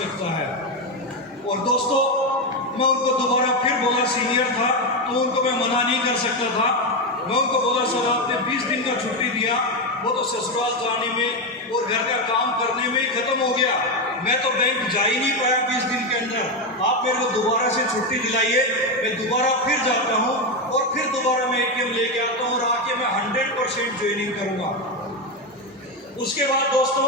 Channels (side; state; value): both; normal; correlation 0.10